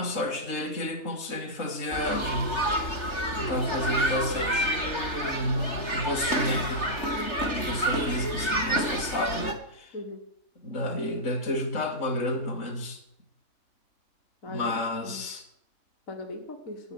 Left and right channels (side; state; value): right; late; 3.3 ms